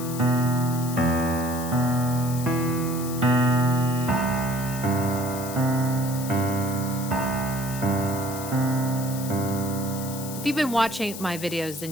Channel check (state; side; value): noise; left; hiss, 10 dB below the sound